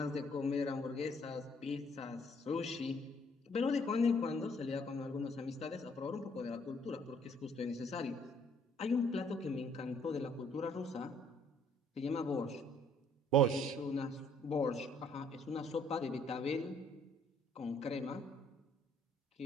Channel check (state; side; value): normal; both; correlation 0.64